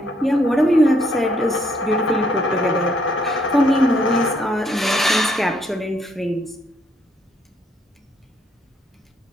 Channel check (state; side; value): normal; both; correlation 0.70